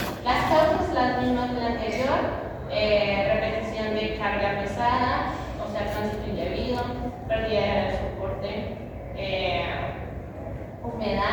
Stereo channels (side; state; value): both; identical; correlation 1.00